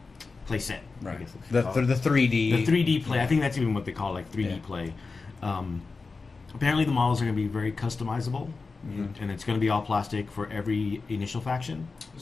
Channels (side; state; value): right; quieter; 4.2 dB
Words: play set. I Right. guess it's The called. 3D. The 3D play. I think that's even what they call 3D Yeah. play. Apparently the models are going to be very customizable, and it's going to be all plastic for every initial faction.